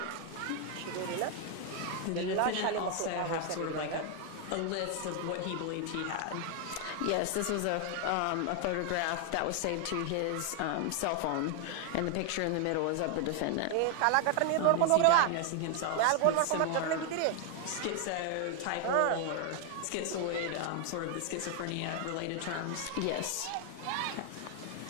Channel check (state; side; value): different; both; correlation 0.00